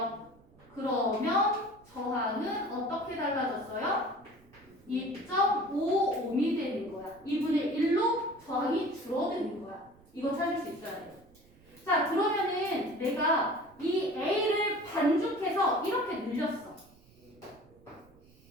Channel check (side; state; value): right; noise; rumble, 28 dB below the sound